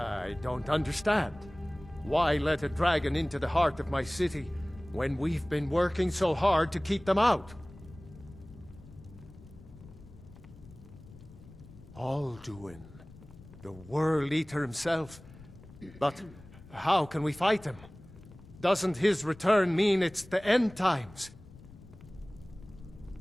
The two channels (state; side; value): noise; left; rumble, 19 dB below the sound